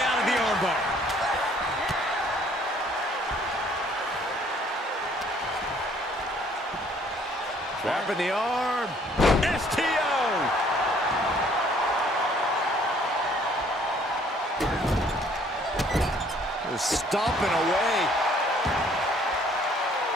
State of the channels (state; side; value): normal; both; correlation 0.60